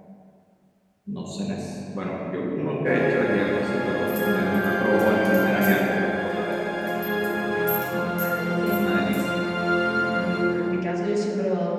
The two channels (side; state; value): both; identical; correlation 1.00